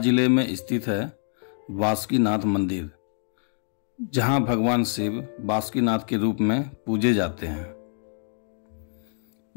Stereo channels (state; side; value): silent; right; 58 dB below the other